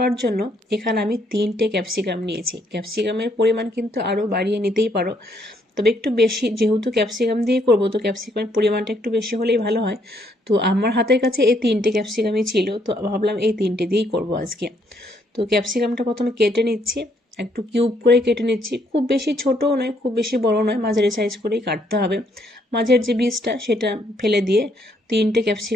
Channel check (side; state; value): both; normal; correlation 0.71